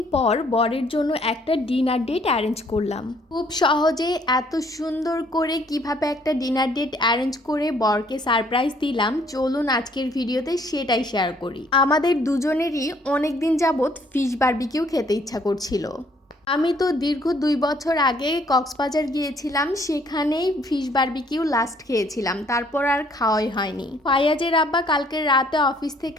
পর বরের জন্য একটা ডিনার ডেট অ্যারেঞ্জ করলাম। খুব সহজে এত সুন্দর করে কিভাবে একটা ডিনার ডেট অ্যারেঞ্জ করে বরকে সারপ্রাইজ দিলাম, চলুন আজকের ভিডিওতে সেটাই শেয়ার করি। আমাদের দুজনেরই অনেক দিন যাবৎ ফিশ বারবিকিউ খেতে ইচ্ছা করছিল। আমি তো দীর্ঘ 2 বছর আগে কক্সবাজার গিয়েছিলাম, সেখানেই ফিশ বারবিকিউ লাস্ট খেয়েছিলাম, তারপর আর খাওয়াই হয়নি। ফায়াজের আব্বা কালকে রাতে অফিস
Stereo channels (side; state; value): both; normal; correlation 0.63